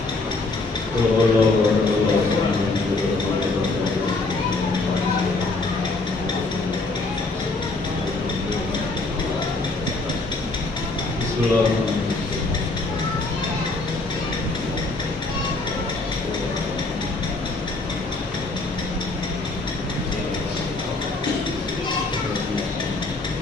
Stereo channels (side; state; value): right; quieter; 3.3 dB